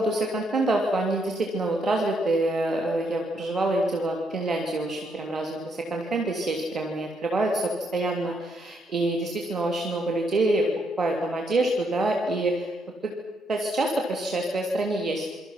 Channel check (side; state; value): both; normal; correlation 0.75